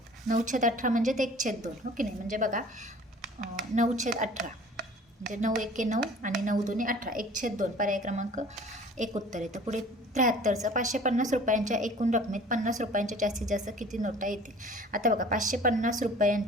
9/18 म्हणजे 1/2, हो की नाही. म्हणजे बघा 9/18 म्हणजे 9 एके 9 आणि 9 दुने 18, 1/2 पर्याय क्रमांक 1 उत्तर येतं. पुढे 73चं 550 रुपयांच्या एकूण रकमेत 50 रुपयांच्या जास्तीत जास्त किती नोटा येतील. आता बघा 550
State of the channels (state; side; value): normal; both; correlation 0.47